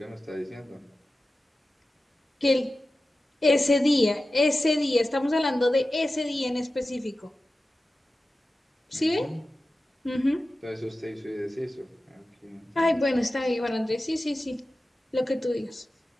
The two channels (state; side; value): normal; both; correlation 0.94